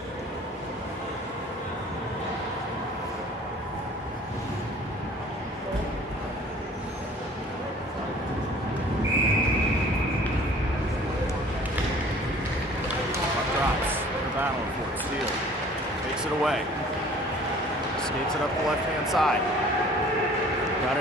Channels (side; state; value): both; normal; correlation 0.50